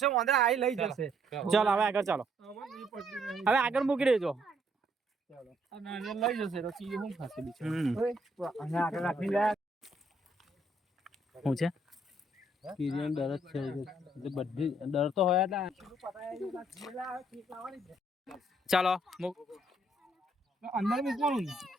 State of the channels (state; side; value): normal; both; correlation 0.68